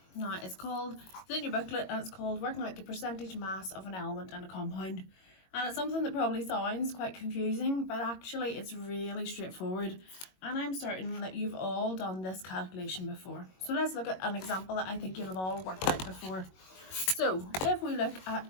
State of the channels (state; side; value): late; right; 22 ms